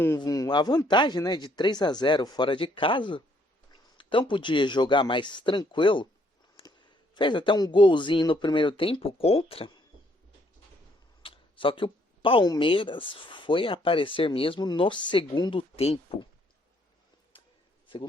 a vantagem, né, de 3-0 fora de casa. Então podia jogar mais tranquilo. Fez até um golzinho no primeiro tempo contra. Só que o Palmeiras foi aparecer mesmo no segundo tempo.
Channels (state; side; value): normal; both; correlation 0.68